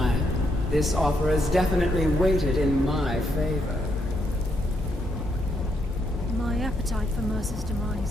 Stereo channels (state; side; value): normal; both; correlation 0.77